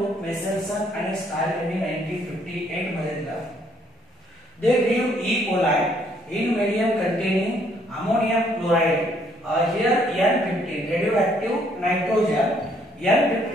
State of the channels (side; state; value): both; normal; correlation 0.67